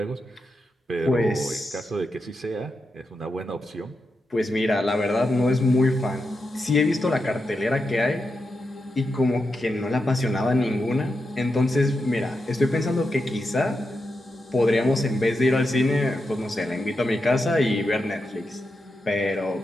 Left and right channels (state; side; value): normal; both; correlation 0.87